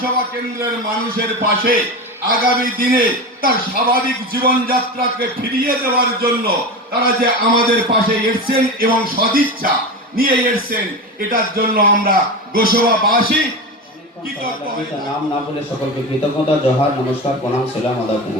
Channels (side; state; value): both; normal; correlation 0.24